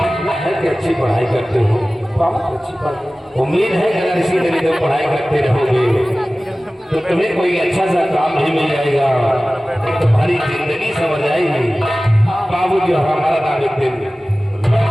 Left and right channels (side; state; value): both; normal; correlation 0.97